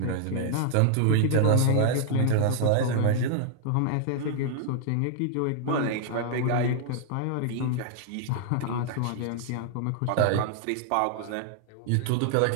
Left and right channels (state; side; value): different; both; correlation -0.01